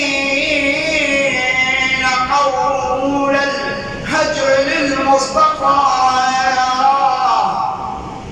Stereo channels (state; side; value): identical; both; correlation 1.00